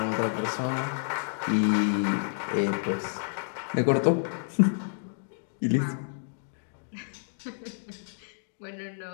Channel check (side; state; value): right; silent; digital silence